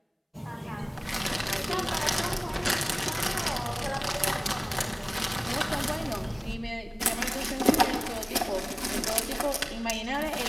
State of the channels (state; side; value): identical; both; correlation 1.00